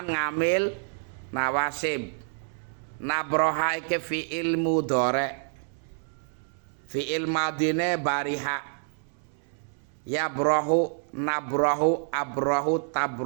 ngamil nawasib. Nabroha iki fi'il mudhari, fi'il madine bariha. Yabrahu, nabrahu, abrahu,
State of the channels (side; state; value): left; silent; 59 dB below the other